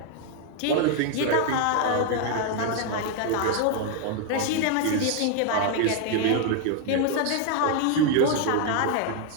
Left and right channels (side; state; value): both; different; correlation 0.00